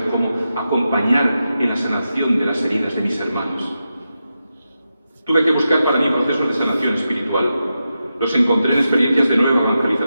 cómo acompañar en la sanación de las heridas de mis hermanos. Tuve que buscar para mí procesos de sanación espiritual. Los encontré en experiencias de nueva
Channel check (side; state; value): both; inverted; correlation -0.89